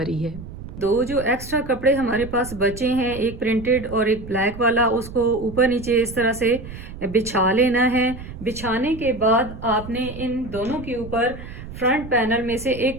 है। दो जो एक्स्ट्रा कपड़े हमारे पास बचे हैं, एक प्रिंटेड और एक ब्लैक वाला, उसको ऊपर नीचे इस तरह से बिछा लेना है। बिछाने के बाद आपने इन दोनों के ऊपर फ्रंट पैनल में से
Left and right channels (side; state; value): right; noise; rumble, 13 dB below the sound